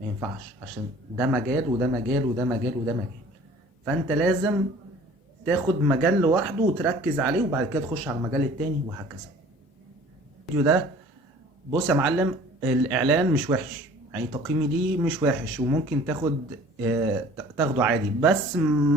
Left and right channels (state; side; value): normal; both; correlation 0.48